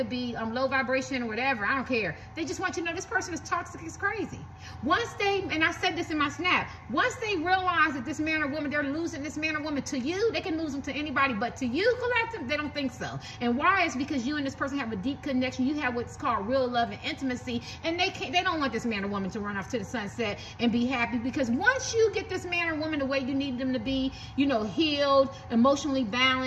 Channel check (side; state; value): both; identical; correlation 1.00